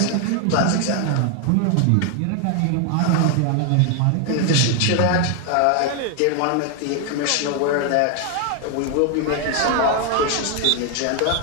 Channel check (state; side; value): different; both; correlation 0.01